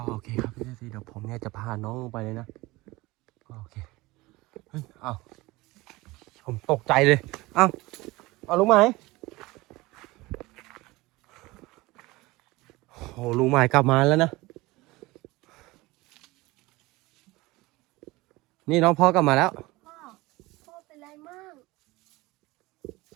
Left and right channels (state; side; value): quieter; left; 21.0 dB